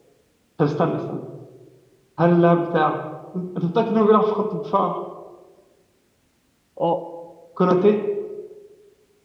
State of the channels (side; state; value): both; identical; correlation 1.00